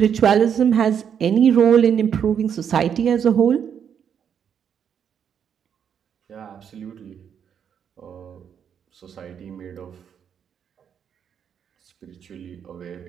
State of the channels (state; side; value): quieter; left; 8.0 dB